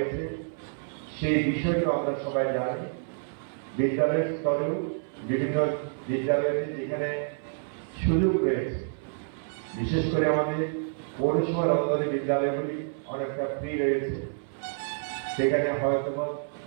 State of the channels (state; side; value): silent; left; 59 dB below the other